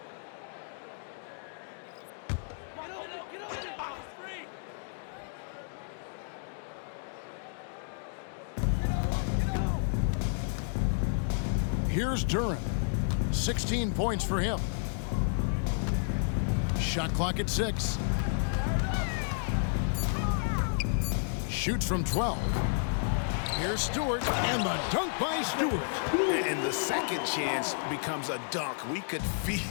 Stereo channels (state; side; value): silent; right; digital silence